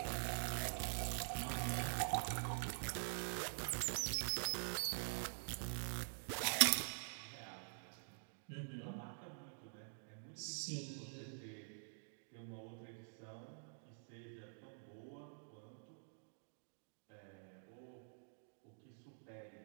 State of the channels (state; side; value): silent; left; digital silence